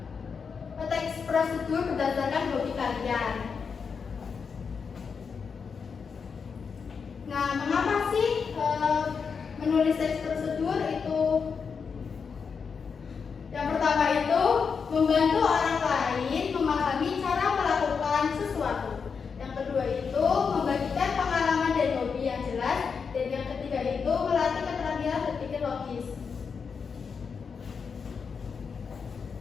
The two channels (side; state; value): right; quieter; 5.8 dB